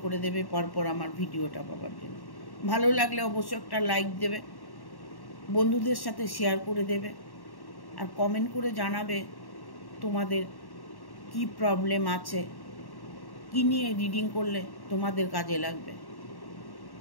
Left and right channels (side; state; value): right; late; 1.1 ms